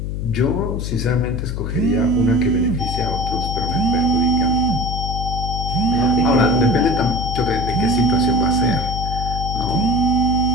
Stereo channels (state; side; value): noise; left; hum, 4 dB below the sound